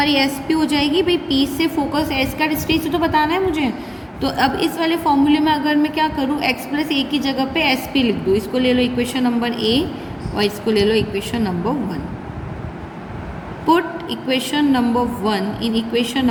एस पी हो जाएगी, भाई पी से फोकस एस का डिस्टेंस तो बताना है मुझे। तो अब इस वाले फॉर्मूले में अगर मैं क्या करूँ x प्लस ए की जगह पे एस पी लिख दूँ, इसको ले लो इक्वेशन नंबर a और इसको ले लो equation number 1। Put equation number 1 in equation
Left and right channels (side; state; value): both; identical; correlation 1.00